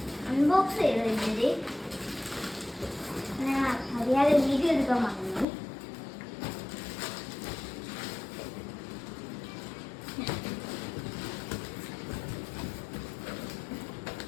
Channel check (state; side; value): drops out; right; at 5.5 s